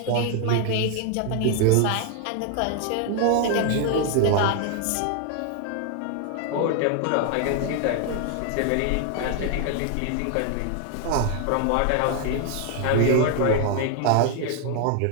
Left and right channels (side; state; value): both; different; correlation 0.00